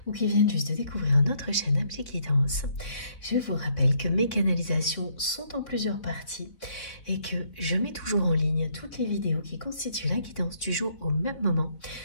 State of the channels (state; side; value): late; right; 3.8 ms